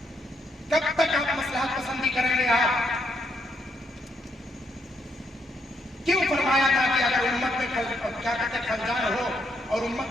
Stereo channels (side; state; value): both; normal; correlation 0.76